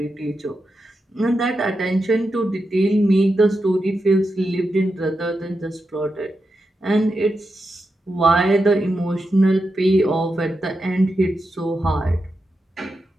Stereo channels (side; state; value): both; normal; correlation 0.88